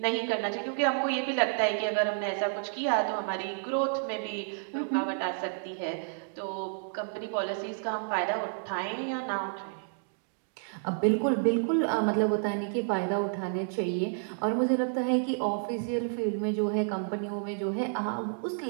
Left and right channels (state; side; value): silent; left; digital silence